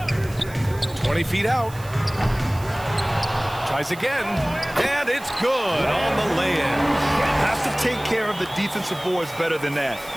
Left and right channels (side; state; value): right; noise; hiss, 19 dB below the sound